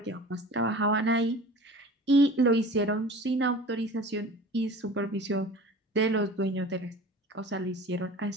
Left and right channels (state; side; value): normal; both; correlation 0.40